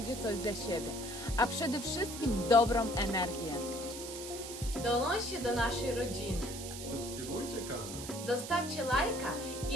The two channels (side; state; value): right; noise; hiss, 9 dB below the sound